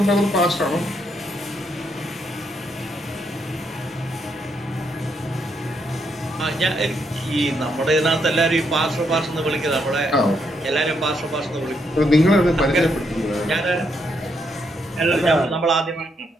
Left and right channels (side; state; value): both; normal; correlation 0.77